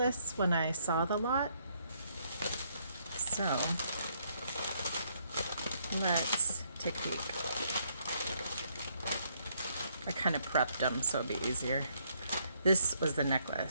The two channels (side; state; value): both; inverted; correlation -0.71